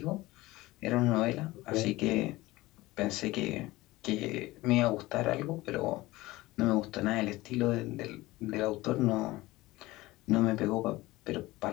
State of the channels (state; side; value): quieter; right; 19.2 dB